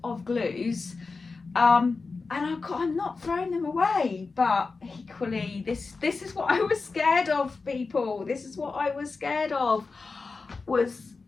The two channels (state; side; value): quieter; right; 4.2 dB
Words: of glues. And I'm not throwing them away, but equally, this is what I was scared of, people. This is what I was scared of, was